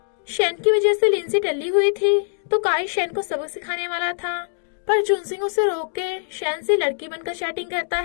शेन की वजह से लिंसी टल्ली हुई थी तो काई शेन को सबक सिखाने वाला था, पर जुनसिंग उसे रोक के शेन से लड़की बनकर चैटिंग करता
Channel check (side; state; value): right; silent; digital silence